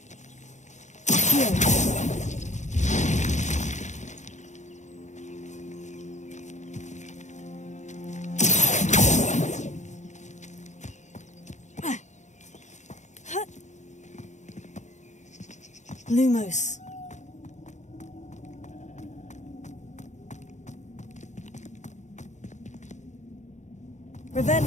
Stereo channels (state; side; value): late; right; 0.34 ms